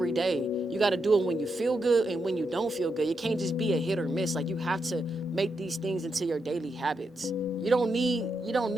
day. You got to do it when you feel good and when you don't feel good. It can't just be a hit or miss. Like, you have to make these things into your daily habits. You don't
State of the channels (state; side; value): normal; both; correlation 0.84